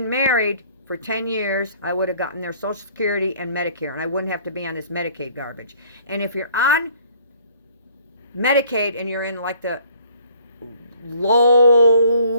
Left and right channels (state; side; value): inverted; both; correlation -0.58